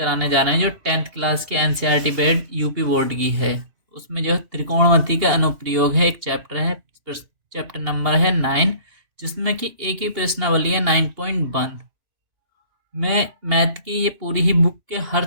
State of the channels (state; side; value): late; left; 2.8 ms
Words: जा रहे हैं, जो 10th क्लास के एनसीईआरटी बेस्ड यूपी बोर्ड की है। उसमें जो है त्रिकोणमिति का अनुप्रयोग है, एक चैप्टर है, चैप्टर नंबर है 9, जिसमें कि एक ही प्रश्नावली है 9.1। मैं मैथ की ये पूरी ही बुक के हर